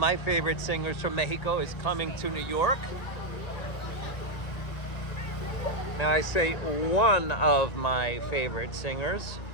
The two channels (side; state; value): right; late; 1.9 ms